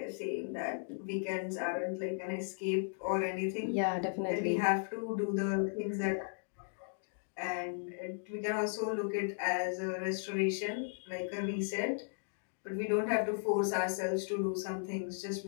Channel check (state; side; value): silent; right; digital silence